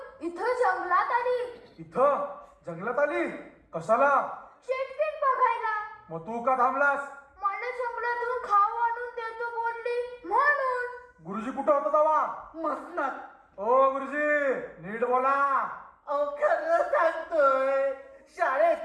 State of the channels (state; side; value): identical; both; correlation 1.00